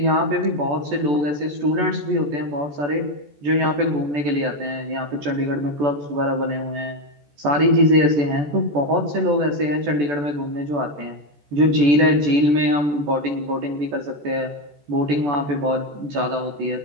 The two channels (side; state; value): left; late; 14 ms